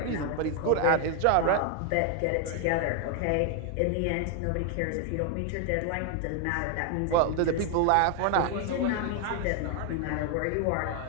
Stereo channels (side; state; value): both; different; correlation 0.01